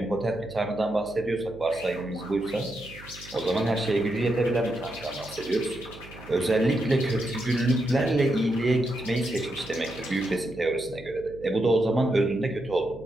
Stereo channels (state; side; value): noise; right; hum, 18 dB below the sound